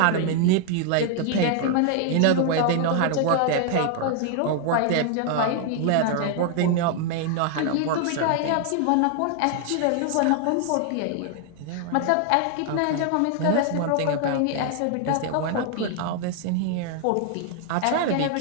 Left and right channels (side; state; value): both; different; correlation 0.00